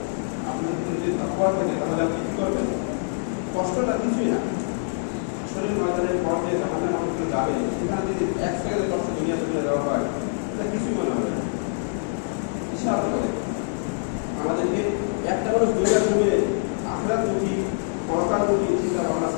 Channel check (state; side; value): silent; right; digital silence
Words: আপনার ভিতরে যদি তাকওয়া থাকে, তাহলে আপনি কি করবেন? কষ্টটা কিছুই না। শরীর ময়দানের পর যে জাহান্নামে মানুষ যাবে, সেখানে যদি 1 সেকেন্ডের কষ্ট দুনিয়া তুলে দেওয়া হয়, এটা কিছুই মনে হবে না। বিশাল করে আমাদেরকে একটা মানুষ দুনিয়ার জমিয়ে আখিরাতমুখী, পরকালমুখী চিন্তা ভাবনা